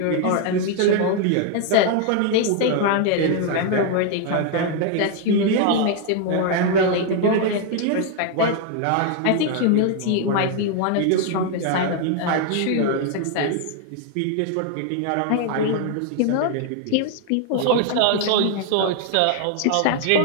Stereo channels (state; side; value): different; both; correlation 0.00